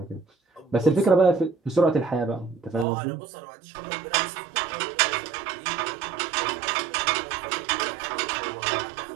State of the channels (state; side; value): drops out; left; at 2.9 s